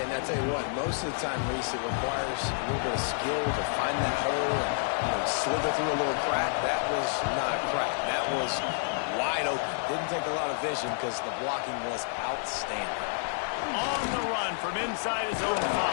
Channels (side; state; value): right; silent; 57 dB below the other